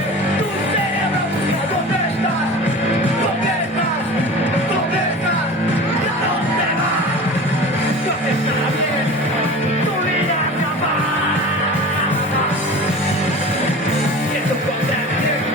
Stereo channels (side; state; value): both; normal; correlation 0.36